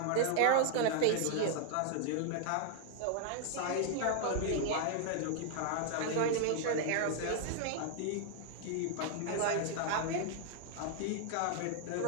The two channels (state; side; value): different; both; correlation 0.00